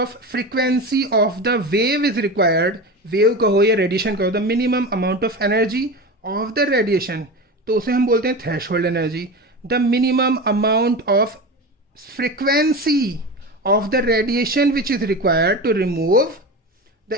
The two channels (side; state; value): both; normal; correlation 0.26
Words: frequency of the wave is required. Wave कहो या radiation कहो, the minimum amount of energy of the radiation, तो उसे हम बोलते हैं threshold energy. The minimum amount of frequency of the radiation which is required to remove the